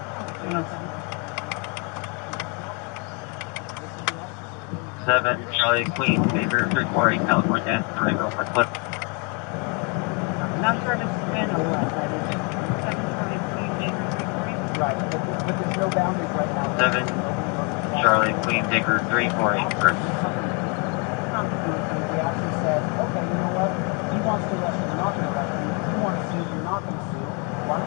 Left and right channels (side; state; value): right; quieter; 33.0 dB